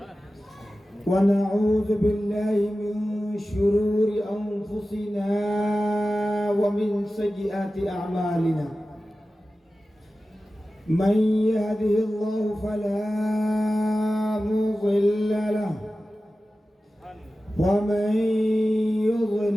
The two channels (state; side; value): normal; both; correlation 0.95